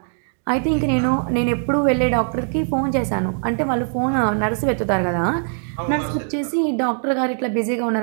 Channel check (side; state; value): left; silent; 56 dB below the other